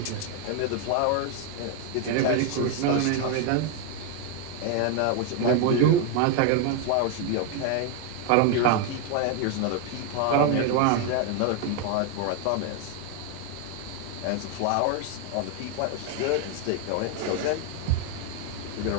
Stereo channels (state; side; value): different; both; correlation 0.01